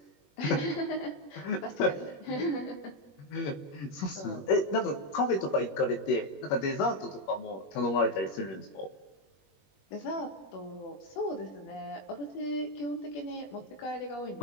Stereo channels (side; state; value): right; late; 21 ms